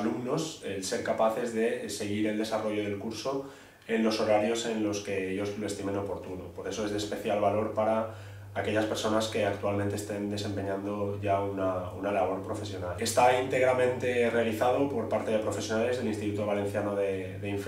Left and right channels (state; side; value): identical; both; correlation 1.00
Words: el ser capaces de seguir el desarrollo del curso en los horarios en los que ellos lo estimen oportuno. Por eso es de especial valor para aquellas personas que actualmente estén desempeñando ya una labor profesional. Está íntegramente realizado por parte de profesionales del Instituto Valenciano de